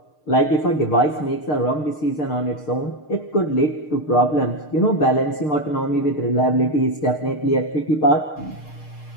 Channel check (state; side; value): late; right; 6.6 ms